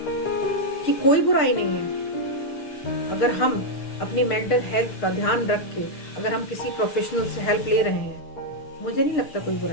कि कोई बुराई नहीं है अगर हम अपनी मेंटल हेल्थ का ध्यान रख के अगर हम किसी प्रोफेशनल से हेल्प ले रहे हैं। मुझे नहीं लगता कोई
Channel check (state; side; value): late; right; 6.6 ms